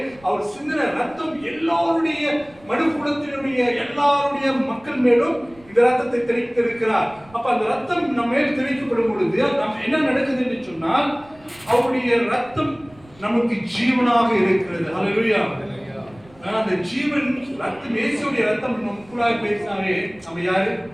அவர் சிந்தின ரத்தம் எல்லாருடைய மனுக்குலத்தினுடைய எல்லாருடைய மக்கள் மேலும் இந்த ரத்தத்தை தெளித்திருக்கிறார். அப்ப அந்த ரத்தம் நம்ம மேல் தெளிக்கப்படும் பொழுது நம்ம என்ன நடக்குது என்று சொன்னால், அவருடைய ரத்தம் நமக்கு ஜீவனாக இருக்கிறது. ஹல்லேலூயா. அந்த ஜீவன் ரத்தம், இயேசுவுடைய ரத்தம் நமக்குள்ளாக பேசினாவே நம்ம யாரு?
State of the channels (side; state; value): right; noise; rumble, 26 dB below the sound